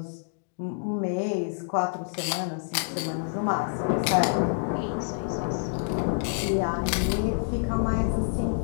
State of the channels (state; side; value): silent; right; digital silence